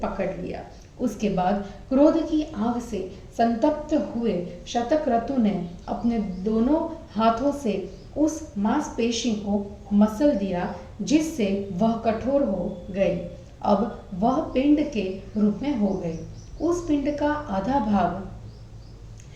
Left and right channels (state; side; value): identical; both; correlation 1.00